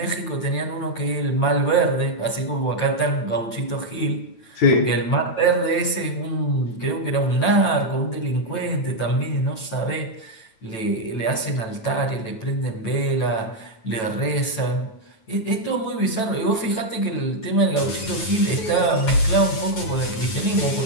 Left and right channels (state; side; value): late; right; 9.1 ms